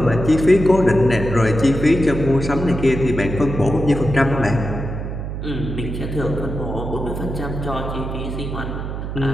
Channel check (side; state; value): right; noise; hum, 6 dB below the sound